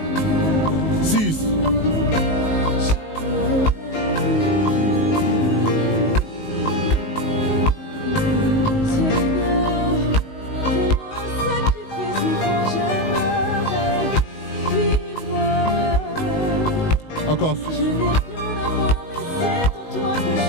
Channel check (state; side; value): late; right; 19 ms